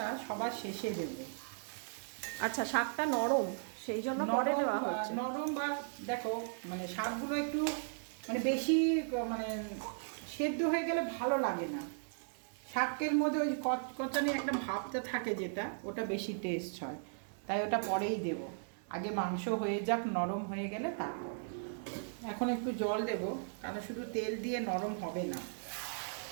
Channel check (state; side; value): silent; left; digital silence